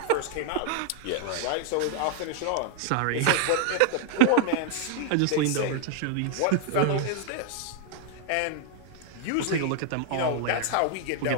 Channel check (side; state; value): both; different; correlation 0.00